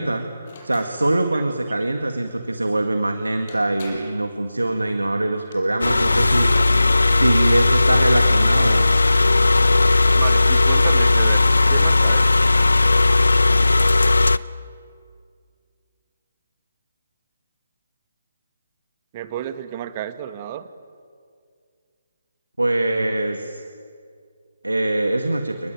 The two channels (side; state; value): both; inverted; correlation -0.96